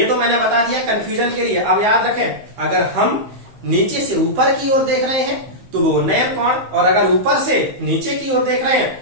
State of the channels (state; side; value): late; left; 15 ms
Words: तो मैंने बता दिया कंफ्यूजन के लिए। अब याद रखें, अगर हम नीचे से ऊपर की ओर देख रहे हैं तो वो उन्नयन कोण, और अगर ऊपर से नीचे की ओर देख रहे